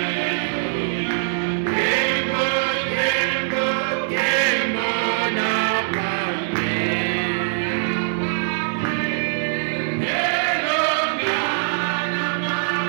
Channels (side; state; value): left; silent; 60 dB below the other